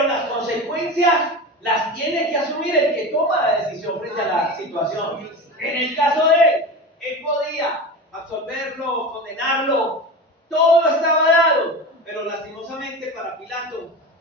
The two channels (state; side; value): normal; both; correlation 0.28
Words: las consecuencias las tiene que asumir el que toma la decisión frente a la situación. En el caso de él podía absolverlo, condenarlo, todo estaba dado, pero lastimosamente para Pilato,